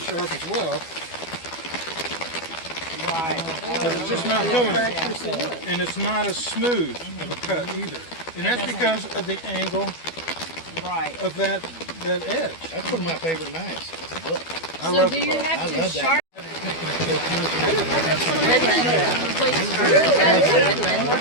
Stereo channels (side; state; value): right; late; 12 ms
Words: as well. Right. But it's just not doing it. And it's not as smooth of a cut either. And that's because of the angle of that edge. That's one of my favorite knives. That's a book. I love the Do you book. have I to love sharpen?